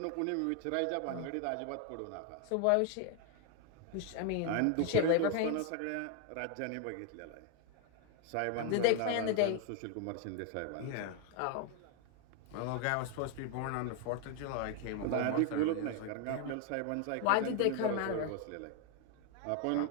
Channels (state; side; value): different; both; correlation 0.00